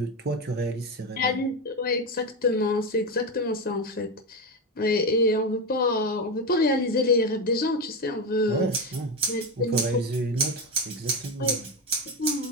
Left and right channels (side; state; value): both; normal; correlation 0.15